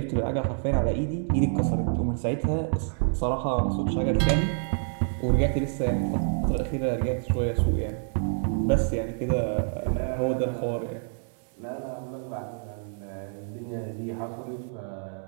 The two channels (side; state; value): left; silent; 60 dB below the other